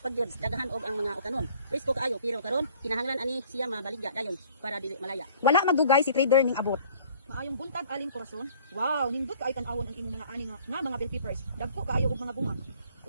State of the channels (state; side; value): inverted; both; correlation -0.54